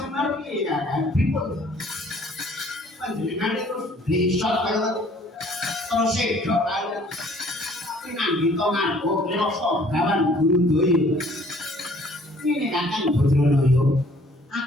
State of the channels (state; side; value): normal; both; correlation 0.57